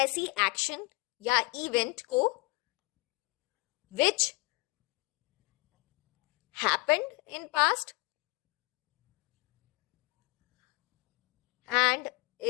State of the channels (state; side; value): quieter; right; 27.3 dB